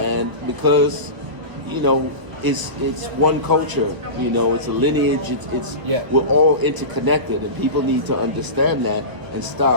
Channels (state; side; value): late; left; 1.0 ms